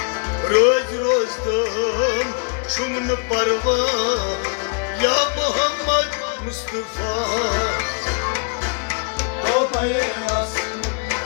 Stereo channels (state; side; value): quieter; right; 37.2 dB